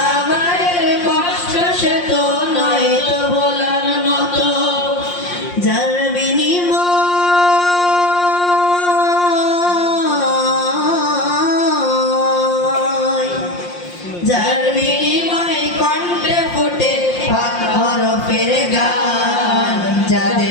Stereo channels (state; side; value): late; right; 5.7 ms